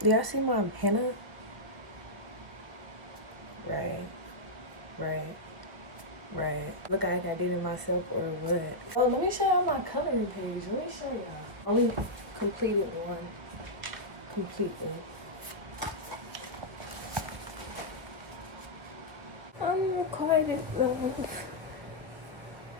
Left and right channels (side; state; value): left; late; 1.2 ms